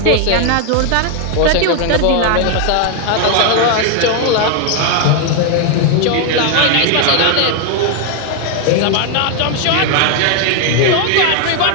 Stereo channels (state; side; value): different; both; correlation 0.01